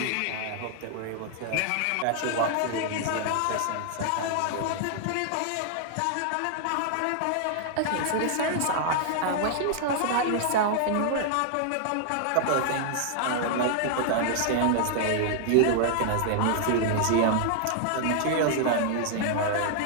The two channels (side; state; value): both; different; correlation -0.01